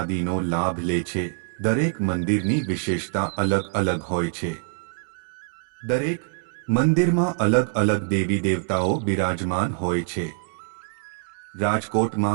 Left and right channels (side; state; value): left; silent; 62 dB below the other